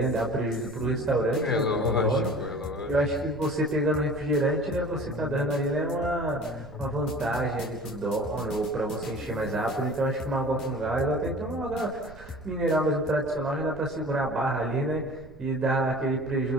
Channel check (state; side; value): noise; right; rumble, 19 dB below the sound